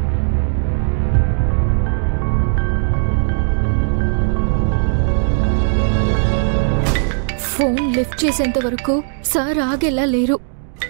ఫోన్ లిఫ్ట్ చేసేంత వరకు సార్ ఆగేలా లేరు.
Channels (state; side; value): silent; left; 60 dB below the other